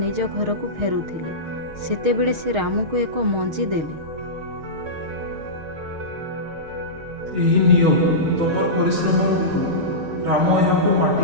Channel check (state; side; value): late; left; 6.4 ms